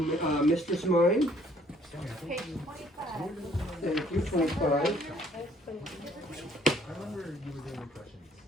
Mistress Mine. Page 25. Thank you, 25. I remember you were doing impressions.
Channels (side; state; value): both; normal; correlation 0.62